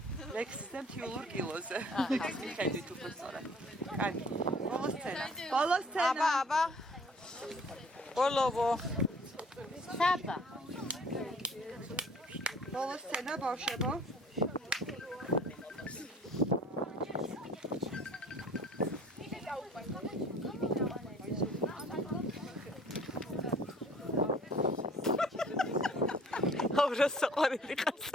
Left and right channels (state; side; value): normal; both; correlation 0.52